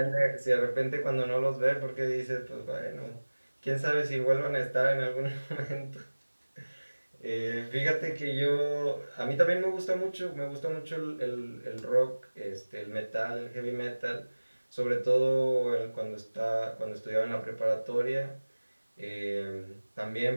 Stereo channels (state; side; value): inverted; both; correlation -1.00